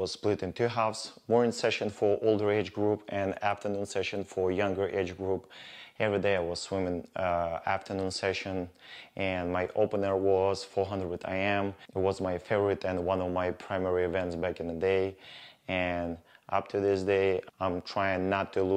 split in 2 halves, morning session for older age group and afternoon session for younger age group. Every day I was swimming afternoon session, and my opener was 400 IM. It was my favorite and one of my primary events back in the day, and up to this day I'm trying not to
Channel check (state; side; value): identical; both; correlation 1.00